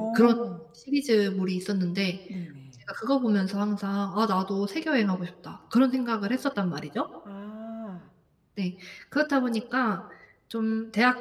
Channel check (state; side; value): identical; both; correlation 1.00